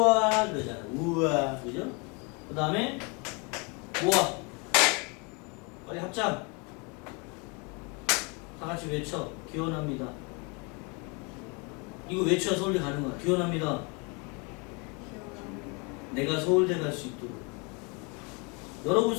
그러잖아. 우와 그죠? 그 다음에 우와 빨리 합장 다 같이 외쳐. 기원합니다. 이거 외쳐야 서울대 가는 거야. 기원합니다. 내가 서울대 갈 수 있도록. 여러분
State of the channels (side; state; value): right; quieter; 31.6 dB